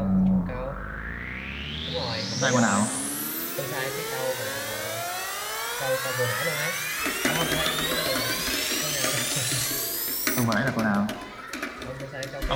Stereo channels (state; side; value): identical; both; correlation 1.00